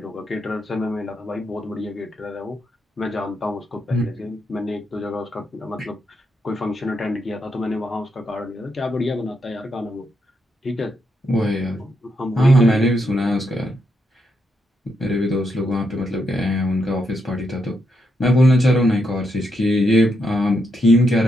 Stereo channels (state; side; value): normal; both; correlation 0.81